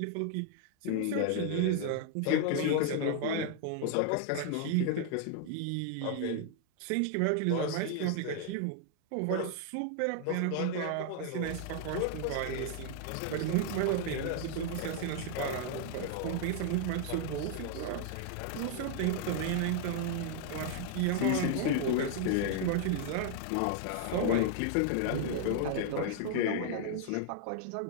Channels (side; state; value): both; different; correlation 0.00